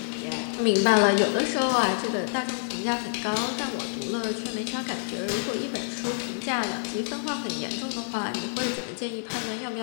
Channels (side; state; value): right; silent; digital silence